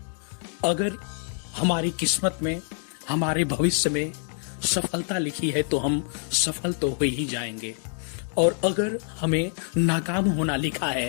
अगर हमारी किस्मत में, हमारे भविष्य में सफलता लिखी है तो हम सफल तो हो ही जाएंगे, और अगर हमें नाकाम होना लिखा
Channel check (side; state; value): right; silent; 61 dB below the other